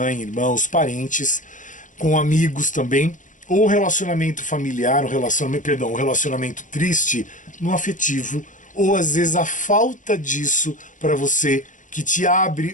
irmãos, parentes, com amigos também, ou relacionamento familiar, um relacionamento triste no afetivo, ou às vezes a falta disso para você, que te abre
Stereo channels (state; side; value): late; right; 0.37 ms